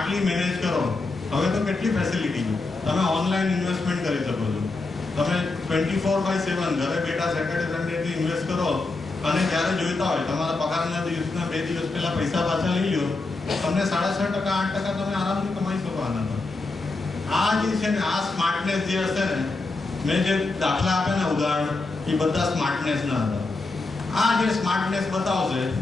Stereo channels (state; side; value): quieter; right; 3.5 dB